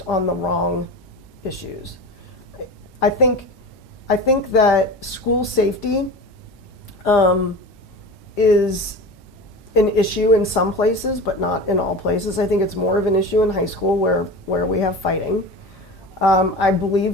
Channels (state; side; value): normal; both; correlation 0.32